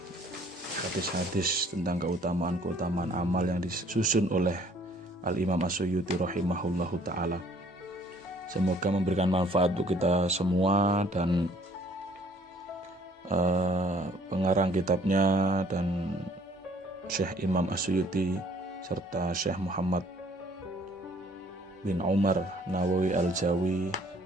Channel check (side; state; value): both; normal; correlation 0.58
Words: hadis-hadis tentang keutamaan amal yang disusun oleh Al-Imam As-Suyuti rahimahullahu ta'ala. Semoga memberikan manfaat untuk kita semua, dan pengarang kitabnya dan Syekh Imam As-Suyuti serta Syekh Muhammad bin Umar Nawawi Al-Jawi